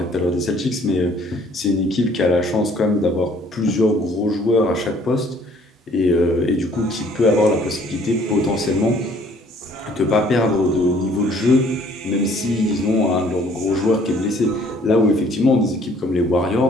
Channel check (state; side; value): normal; both; correlation 0.58